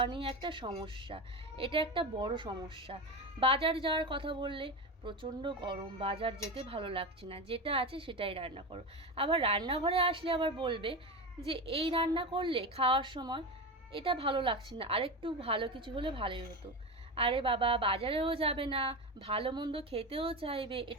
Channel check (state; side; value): normal; both; correlation 0.21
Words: নিয়ে একটা সমস্যা। এটা একটা বড় সমস্যা। বাজার যাওয়ার কথা বললে প্রচণ্ড গরম, বাজার যেতে ভালো লাগছে না, যেটা আছে সেটাই রান্না করো। আবার রান্নাঘরে আসলে আবার বলবে যে এই রান্না করলে খাওয়ার সময় এটা ভালো লাগছে না, আরেকটু ভালো কিছু হলে ভালোই হতো। আরে বাবা, বাজারেও যাবে না, ভালো মন্দ খেতেও চাইবে,